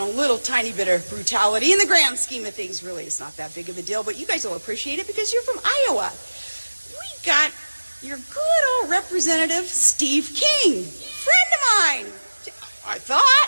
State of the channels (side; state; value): both; inverted; correlation -1.00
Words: little tiny bit of brutality. In the grand scheme of things, really, it's not that big of a deal, but you guys will appreciate it because you're from Iowa. We got your good old representative, Steve King, friend of mine, I